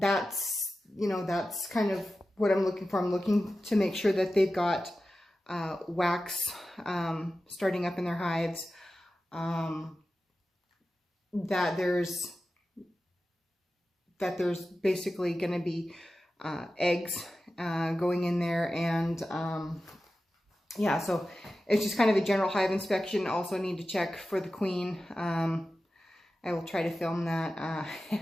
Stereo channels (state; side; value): normal; both; correlation 0.94